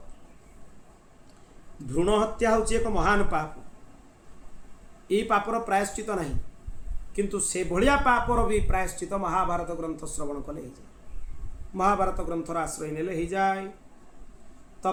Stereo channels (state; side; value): identical; both; correlation 1.00